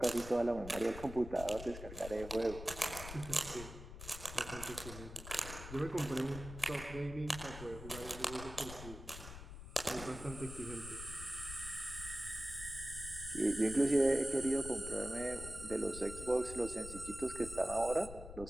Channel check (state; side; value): noise; left; rumble, 11 dB below the sound